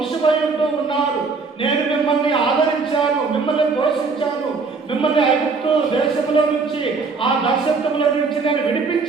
ఉంటూ ఉన్నారు, నేను మిమ్మల్ని ఆదరించాను, మిమ్మల్ని పోషించాను, మిమ్మల్ని ఐగుప్తు దేశంలో నుంచి, ఆ దాస్యత్వంలో నుంచి నేను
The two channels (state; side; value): quieter; left; 4.5 dB